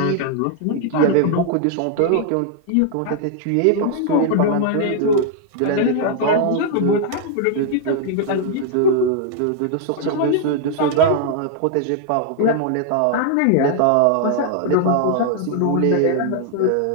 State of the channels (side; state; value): both; different; correlation 0.00